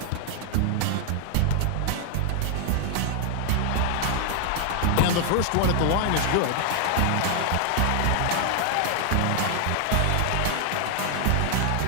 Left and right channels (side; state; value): both; different; correlation 0.00